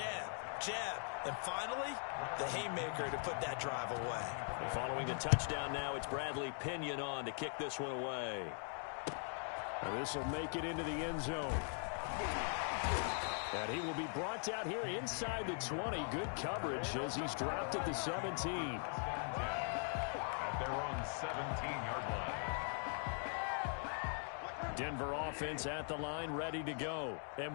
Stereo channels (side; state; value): right; silent; 50 dB below the other